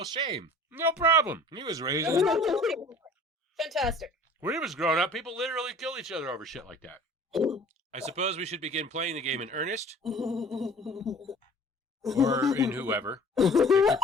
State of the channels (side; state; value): both; normal; correlation 0.47